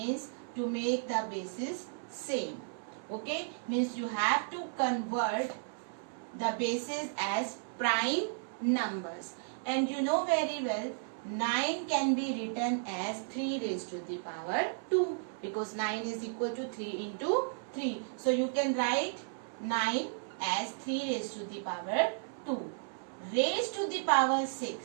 to make the bases same. Okay, means you have to convert the bases as prime numbers. And you know very well 9 can be written as 3 raised to the power 2, because 9 is equal to 3 into 3. So you can write 9 as 3 raised to the power 2. Raised to the power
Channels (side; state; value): left; silent; 55 dB below the other